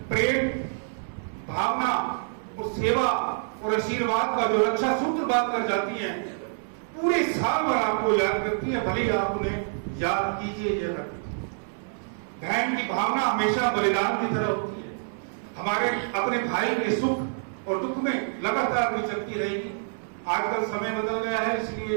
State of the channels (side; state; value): left; silent; 60 dB below the other